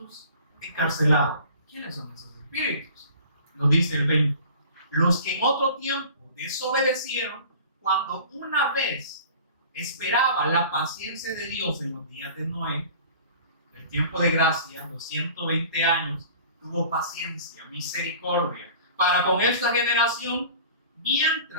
encarcelados. ¿Quiénes son esos espíritus? Nos dice el 20. Los que en otro tiempo desobedecieron, cuando una vez esperaba la paciencia de Dios en los días de Noé, el tiempo de gracia, los 120 años, tuvo paciencia, misericordia, para con esta generación,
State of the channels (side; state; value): both; inverted; correlation -0.44